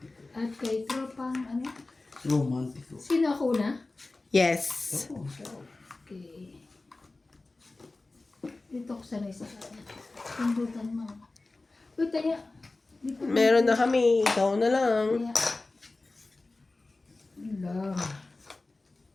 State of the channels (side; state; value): right; quieter; 3.2 dB